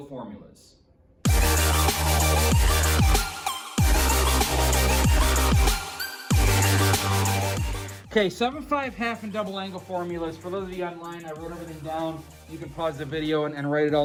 formulas. Okay, 7.5 half and double angle formulas. For those of you online, I wrote everything down. You can pause the video and write it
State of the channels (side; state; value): both; identical; correlation 1.00